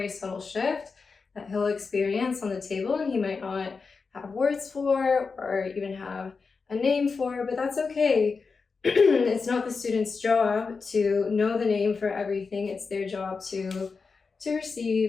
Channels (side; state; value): right; quieter; 4.8 dB